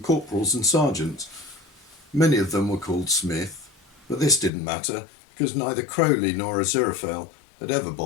corporals and sergeants. Many of them were called Smith, but this didn't matter, because neither Crowley nor Aziraphale had ever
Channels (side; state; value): right; drops out; at 4.5 s